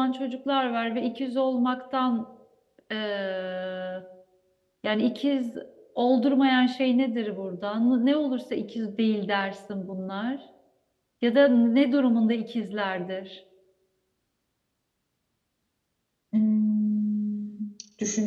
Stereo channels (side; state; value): both; identical; correlation 1.00